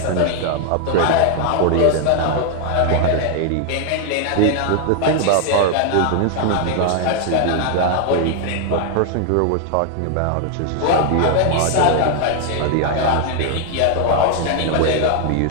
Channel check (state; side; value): different; both; correlation 0.00